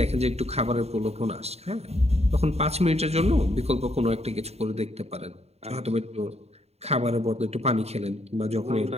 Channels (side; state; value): left; late; 0.30 ms